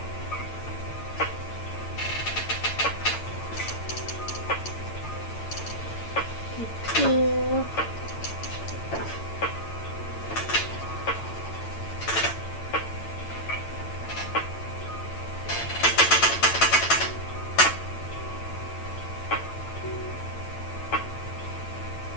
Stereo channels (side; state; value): right; late; 8.9 ms